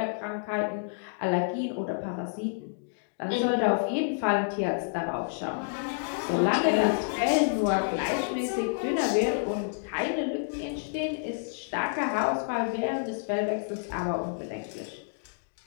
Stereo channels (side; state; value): right; silent; digital silence